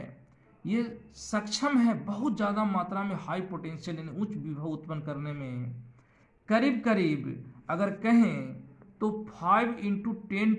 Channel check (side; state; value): both; identical; correlation 1.00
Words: ये सक्षम है बहुत ज़्यादा मात्रा में हाई पोटेंशियल यानी उच्च विभव उत्पन्न करने में। करीब करीब अगर कहें तो 5 ×